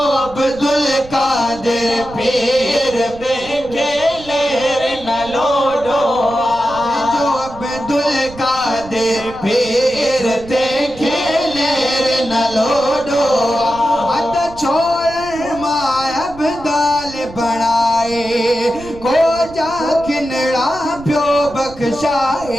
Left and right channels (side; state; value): right; noise; rumble, 18 dB below the sound